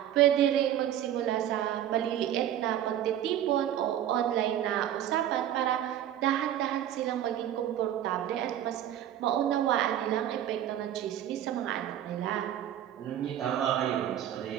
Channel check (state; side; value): quieter; left; 11.2 dB